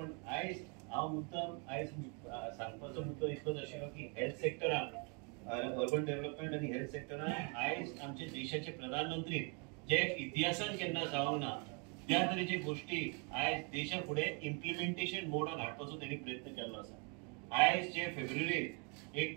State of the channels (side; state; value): left; quieter; 35.1 dB